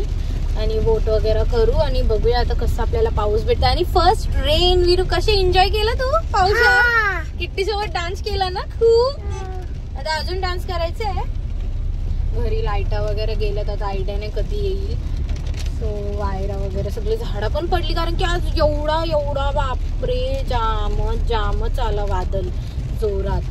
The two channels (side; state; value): both; identical; correlation 1.00